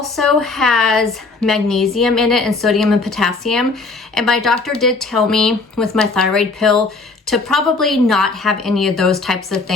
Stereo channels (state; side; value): quieter; right; 3.8 dB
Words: has magnesium in it and sodium and potassium. And my doctor did tell me with my thyroid pill to probably not have any of those types of